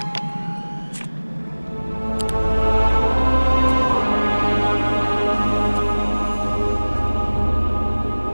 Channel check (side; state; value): both; inverted; correlation -1.00